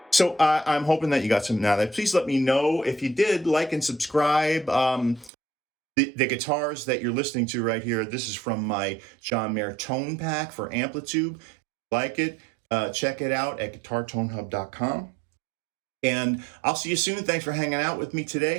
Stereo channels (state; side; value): drops out; left; at 5.3 s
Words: So I'm hoping that you got something out of that. Please let me know if you did. Like and subscribe. The guitars that you're listening to right here, this is from my John Mayer tone pack for Amplitube. Like it, check it out at guitartonehub.com. And I'll see you soon. Thanks for hanging out with me today.